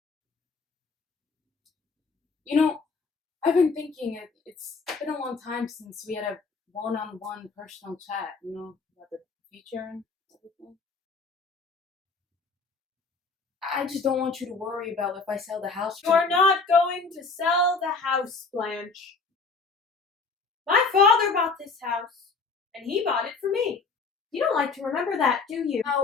You know, I've been thinking it's been a long time since we had a one-on-one personal chat, about the future and everything. I just don't want you to worry about if I sell the house. You are not going to sell the house, Blanche. My father bought this house, and he bought it for me. You don't like to remember that, do you?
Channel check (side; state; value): right; quieter; 4.4 dB